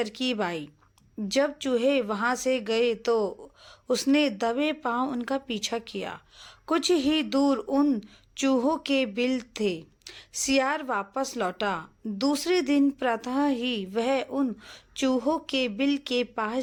आई। जब चूहे वहां से गए तो उसने दबे पांव उनका पीछा किया। कुछ ही दूर उन चूहों के बिल थे। सियार वापस लौटा। दूसरे दिन प्रातः ही वह उन चूहों के बिल के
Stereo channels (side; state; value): both; identical; correlation 1.00